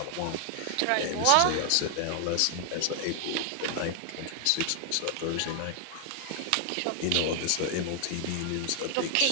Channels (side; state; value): both; different; correlation 0.00